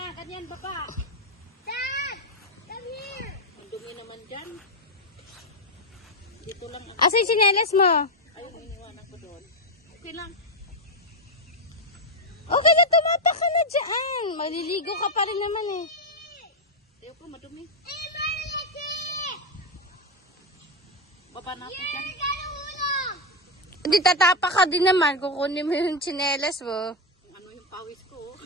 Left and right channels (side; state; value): both; normal; correlation 0.05